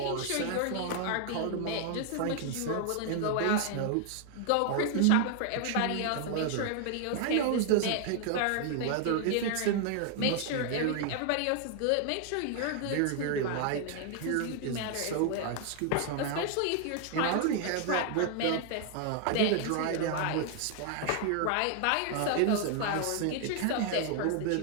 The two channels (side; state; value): both; different; correlation 0.00